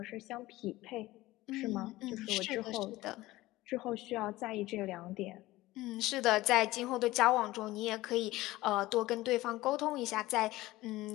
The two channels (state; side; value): quieter; right; 17.9 dB